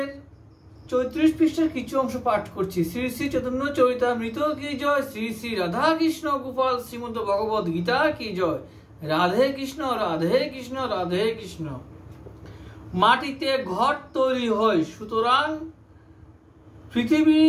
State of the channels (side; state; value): both; identical; correlation 1.00